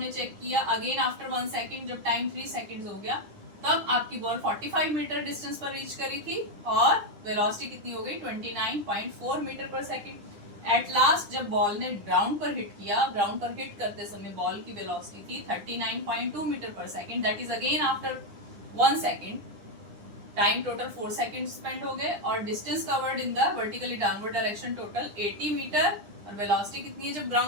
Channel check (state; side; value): late; left; 9.9 ms